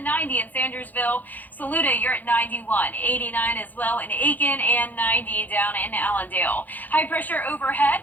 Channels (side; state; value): right; late; 0.083 ms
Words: in Sandersville. Saluda, you're at 91, 89 as well in Aiken, and 90 down in Allendale. High pressure overhead,